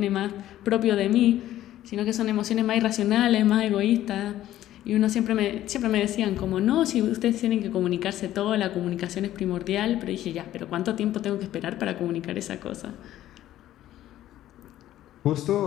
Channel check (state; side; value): quieter; right; 13.3 dB